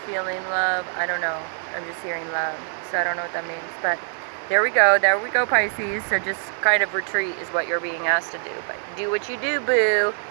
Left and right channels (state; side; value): silent; left; 63 dB below the other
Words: feeling love. I don't know, I'm just hearing love, so I don't know what that means, but there we go, Pisces. So just kind of retreat is what you're being asked to do, but do what you do, boo.